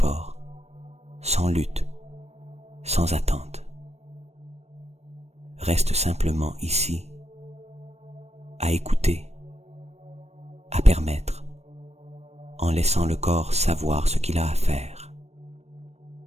sans lutte, sans attente. Reste simplement ici, à écouter, à permettre, en laissant le corps savoir ce qu'il a à faire.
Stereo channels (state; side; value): late; left; 0.31 ms